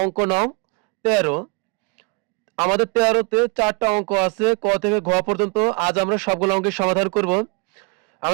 অঙ্ক নং 13। আমাদের 13তে 4টা অঙ্ক আছে, ক থেকে ঘ পর্যন্ত। আজ আমরা সবগুলো অঙ্কের সমাধান করব।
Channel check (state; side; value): quieter; left; 31.5 dB